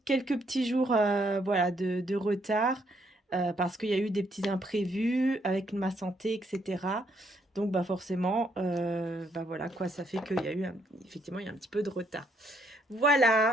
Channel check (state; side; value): normal; both; correlation 0.72